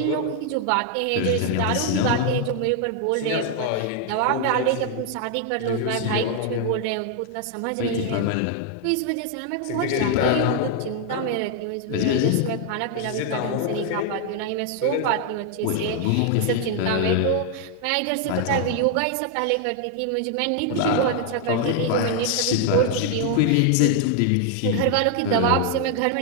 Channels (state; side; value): different; both; correlation 0.00